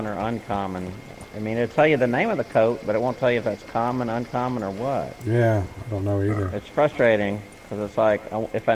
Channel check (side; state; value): both; identical; correlation 1.00